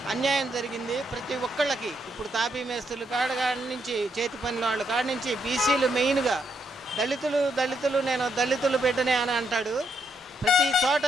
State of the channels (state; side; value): normal; both; correlation 0.78